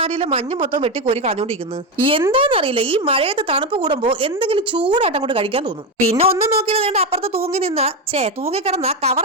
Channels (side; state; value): both; normal; correlation 0.11